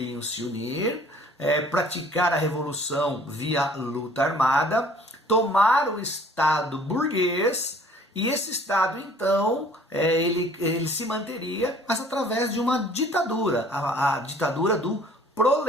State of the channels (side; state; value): both; normal; correlation 0.54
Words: se unir, praticar a revolução via luta armada, tomar o Estado burguês. E esse Estado, então, ele se manteria, mas através de uma ditadura, a ditadura do